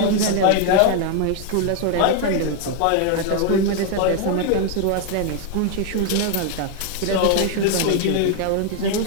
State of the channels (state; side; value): different; both; correlation 0.00